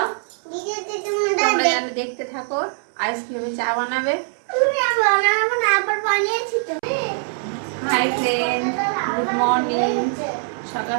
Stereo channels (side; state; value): left; silent; 64 dB below the other